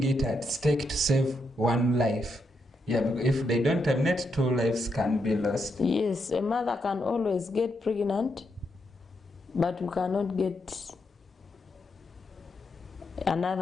it at stake to save one life. Yeah, because if they don't terminate, 2 lives can be lost. Yes, a mother can always get pregnant, but we cannot get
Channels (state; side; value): normal; both; correlation 0.81